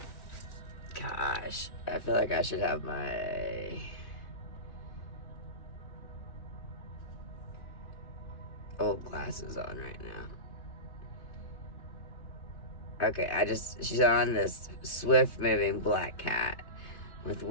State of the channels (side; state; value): right; late; 3.2 ms